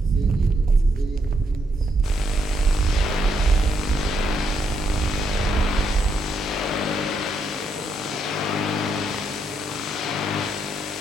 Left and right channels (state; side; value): normal; both; correlation 0.77